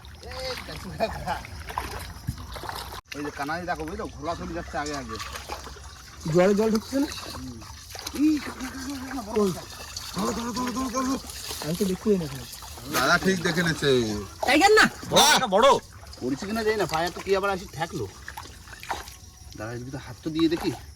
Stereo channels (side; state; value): both; identical; correlation 1.00